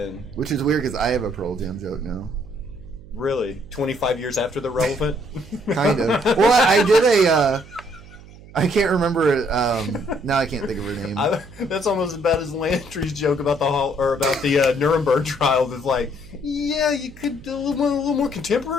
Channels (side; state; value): right; noise; hum, 20 dB below the sound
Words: Which is weird because I have a Pearl Jam joke now. Really? 25 years after the relevant? Kind of. Well, I did a... I can't remember. Now I can't think of her name. That's almost as bad as Landry's joke about the Nuremberg trial. It's like, yeah, you could do a little more